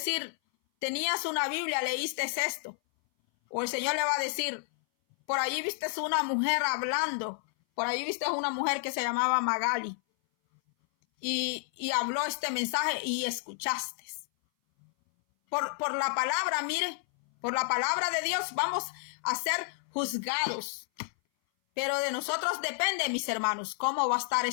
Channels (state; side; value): silent; right; 57 dB below the other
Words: tenías una Biblia, leíste esto. O el Señor le va a decir, por ahí viste una mujer hablando. Por ahí viste una mujer que se llamaba Magali. Y habló este mensaje y escuchaste. Por la palabra, mire, por la palabra de Dios vamos a ser juzgados. Pero de nosotros depende, mis hermanos, cómo va a estar